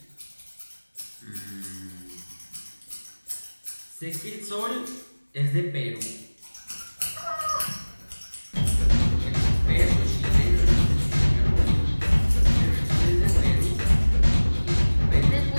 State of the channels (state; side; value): inverted; both; correlation -1.00